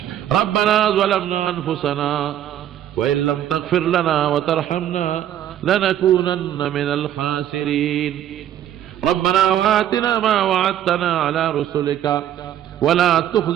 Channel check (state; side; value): quieter; left; 11.3 dB